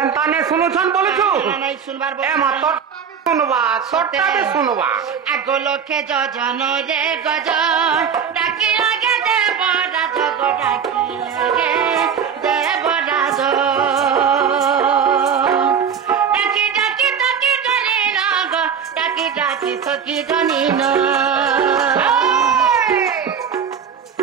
নে শুনুছন বলুছু নাই শুনবার এ মা তোর শুনবা সরটা দে শুনবা আগো লোকে যজন রে গজ ডাকি লাগে দেব রাজ গো ডাকি লাগে দেব রাজ ডাকি ডাকি ডাকি জানি না গো ডাকি ডাকি সকি জানি না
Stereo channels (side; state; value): left; quieter; 7.2 dB